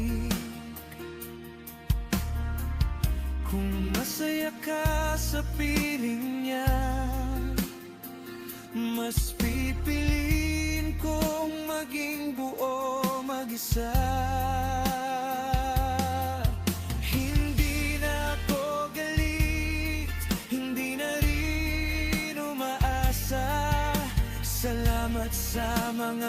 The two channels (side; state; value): both; identical; correlation 1.00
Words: Kung masaya ka sa piling niya, mas pipiliin maging buo mag-isa. Hindi na ako galit, hindi na rin umaasa. Salamat sa